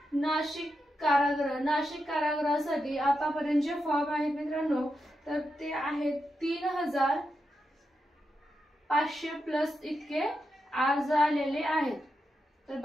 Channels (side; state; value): both; normal; correlation 0.86